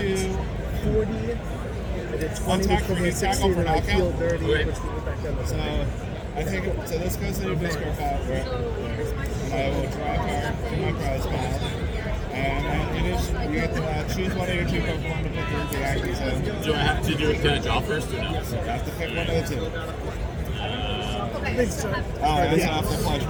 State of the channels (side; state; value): both; identical; correlation 1.00